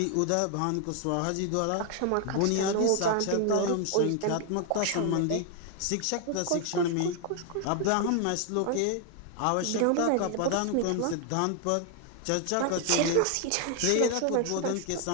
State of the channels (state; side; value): different; both; correlation 0.00